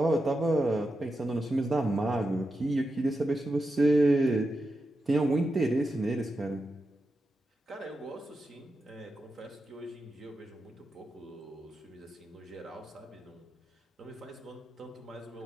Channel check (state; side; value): normal; both; correlation 0.88